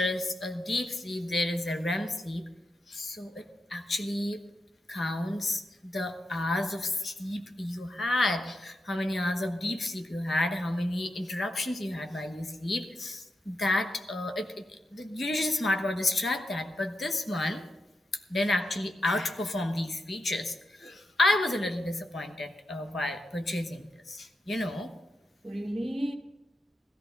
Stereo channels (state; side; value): normal; both; correlation 0.87